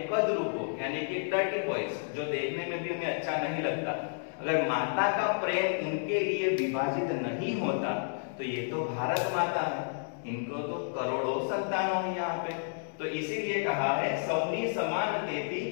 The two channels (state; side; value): silent; right; digital silence